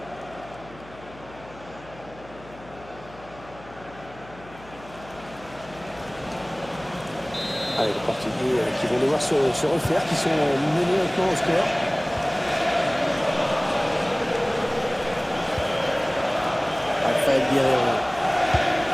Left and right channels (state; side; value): noise; left; hum, 20 dB below the sound